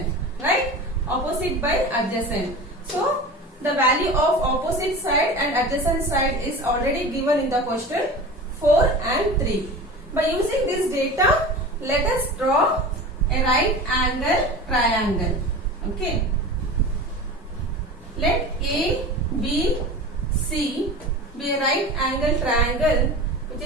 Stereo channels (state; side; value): normal; both; correlation 0.33